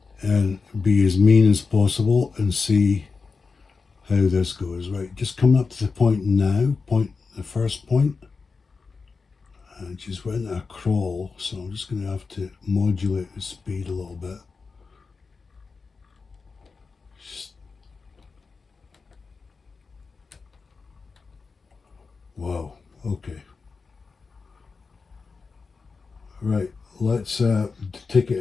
and be as mean as possible and see how this goes. Right, just coming up to the point now, the first point. And she's went into a crawl, so I'm just going to have to modulate the speed a little bit. Wow, okay. Right, let's take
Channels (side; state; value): right; quieter; 4.6 dB